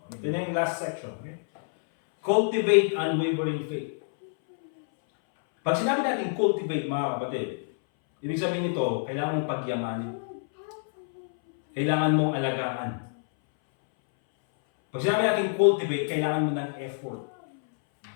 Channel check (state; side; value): silent; right; 60 dB below the other